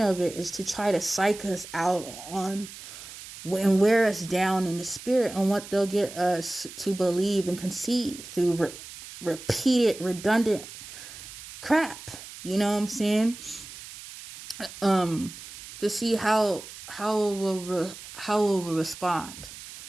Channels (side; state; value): right; noise; hiss, 14 dB below the sound